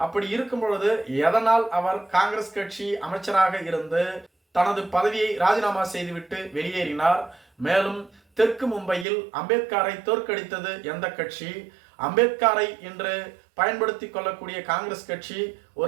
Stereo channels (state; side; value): drops out; left; at 9.1 s